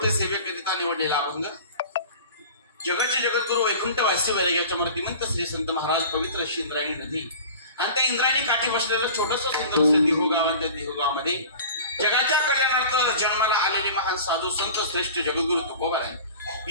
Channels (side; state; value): both; inverted; correlation -0.40